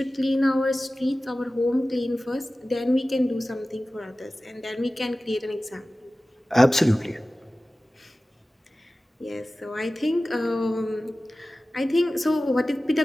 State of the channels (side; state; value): both; normal; correlation 0.96